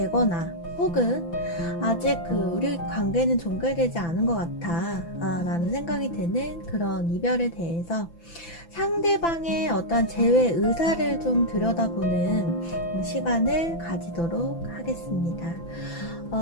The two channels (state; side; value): late; right; 5.9 ms